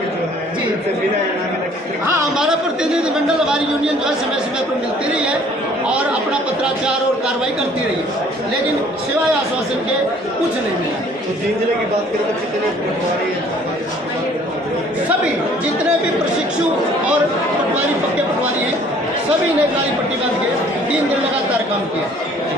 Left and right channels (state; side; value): normal; both; correlation 0.56